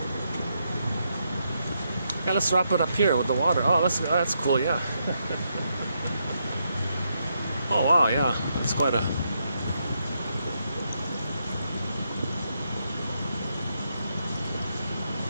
Yeah, let's wrap it up here with the water. Oh, that's cool, yeah. Oh, wow, yeah. That's quite a...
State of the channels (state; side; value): inverted; both; correlation -0.80